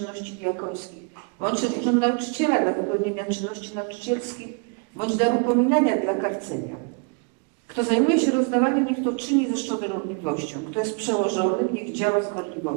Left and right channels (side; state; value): left; quieter; 34.1 dB